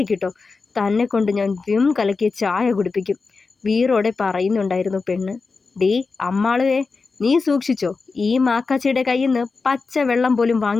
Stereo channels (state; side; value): quieter; right; 4.3 dB